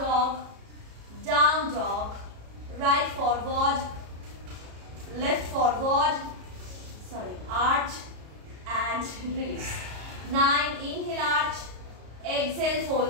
down dog, right forward, left forward, arch and release. 9, inhale arch, exhale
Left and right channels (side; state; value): left; late; 33 ms